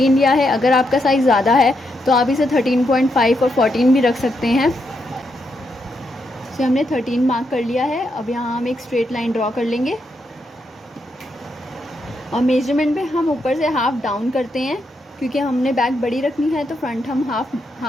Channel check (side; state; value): both; normal; correlation 0.81